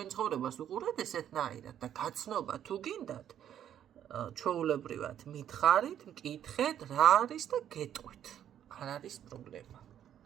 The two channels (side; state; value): left; quieter; 10.2 dB